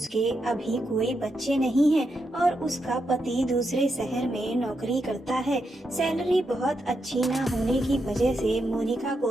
अभी कोई बच्चे नहीं हैं और उसका पति दूसरे शहर में नौकरी करता है। सैलरी बहुत अच्छी ना होने की वजह से मोनिका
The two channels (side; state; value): both; normal; correlation 0.83